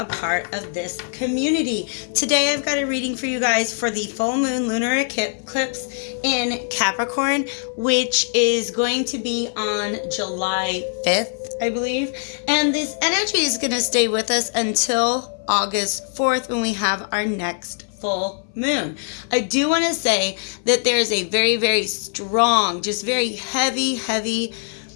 part of this community. Today, I've got a reading for you guys for the full moon lunar eclipse in Capricorn, which is going to be on July 5th, I believe. And this energy is going to stay with us until August 4th when we have our next full moon. I do want to say that there's a very, very strong, just very heavy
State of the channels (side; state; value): right; silent; 59 dB below the other